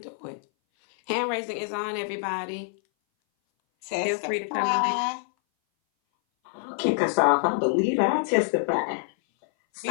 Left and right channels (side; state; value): right; silent; 59 dB below the other